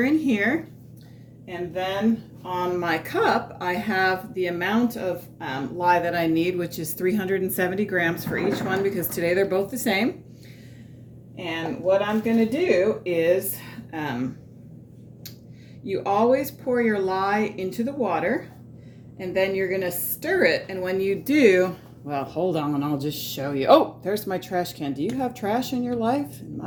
in here. And then on my cup, I have the amount of lye that I need, which is 370 grams for each one, because today they're both the same. And what I'm going to do is you always pour your lye into the water, and then you're going to stir it. And when you do, well, hold on, I'll just show you. Oh, there's my trash can. Do you have trash in your life? In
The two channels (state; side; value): identical; both; correlation 1.00